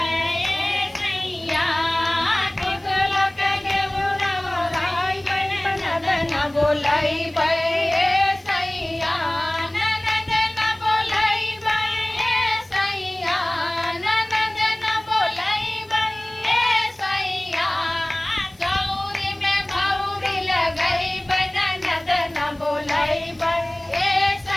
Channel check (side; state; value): left; noise; hiss, 29 dB below the sound